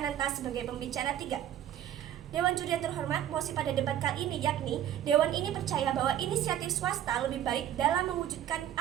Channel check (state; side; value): quieter; left; 11.1 dB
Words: sebagai pembicara 3. Dewan Juri yang terhormat, mosi pada debat kali ini yakni Dewan ini percaya bahwa inisiatif swasta lebih baik dalam mewujudkan